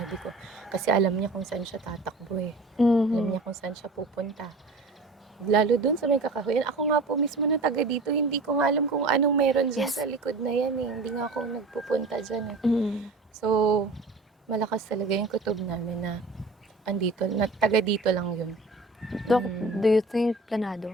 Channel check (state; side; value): quieter; left; 3.2 dB